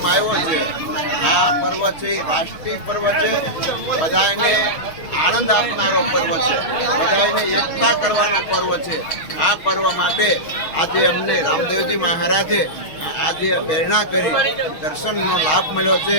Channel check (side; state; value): right; late; 6.3 ms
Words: આવ્યો છે। આ પર્વ છે રાષ્ટ્રીય પર્વ છે, બધાને આનંદ આપનારો પર્વ છે, બધાને એકતા કરવાનો પર્વ છે। આ પર્વ માટે આજે અમને રામદેવજી મહારાજે આજે પ્રેરણા કરી દર્શનનો લાભ મળ્યો છે।